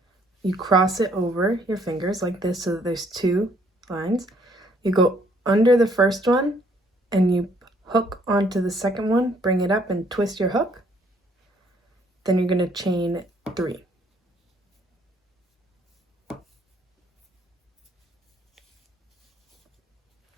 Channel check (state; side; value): normal; both; correlation 0.65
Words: You cross it over your fingers like this so that there's two lines. You go under the first one and you hook onto the second one, bring it up and twist your hook. Then you're going to chain 3.